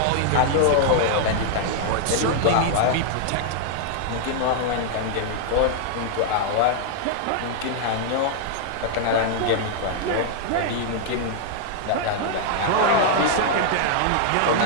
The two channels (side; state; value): both; different; correlation 0.00